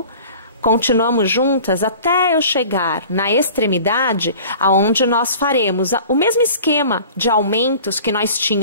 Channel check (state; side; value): inverted; both; correlation -0.43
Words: continuamos juntas até eu chegar na extremidade, aonde nós faremos o mesmo esquema de aumentos que nós